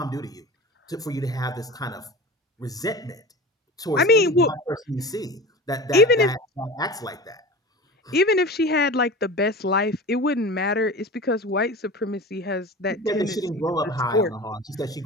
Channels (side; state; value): both; normal; correlation 0.33